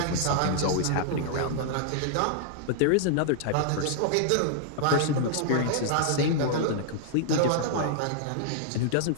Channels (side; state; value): both; different; correlation -0.01